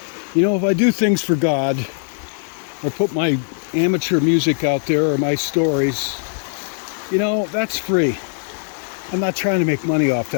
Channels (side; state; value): right; silent; 59 dB below the other